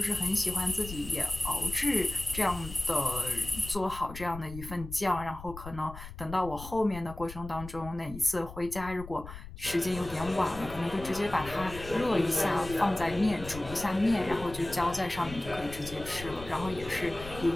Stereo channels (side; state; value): left; noise; rumble, 13 dB below the sound